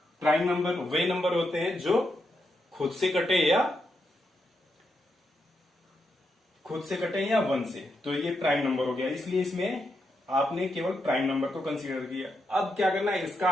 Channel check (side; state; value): both; normal; correlation 0.83